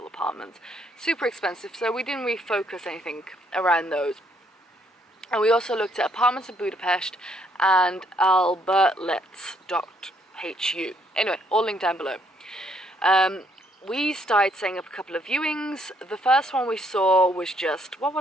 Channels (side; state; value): both; normal; correlation 0.70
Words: apartments. Super expensive, so we didn't really focus anything around those. And we also looked at Apartments in Budapest and albertlets.hu. Anyway, all linked down below. We started setting up a couple of viewings. The first one we saw was what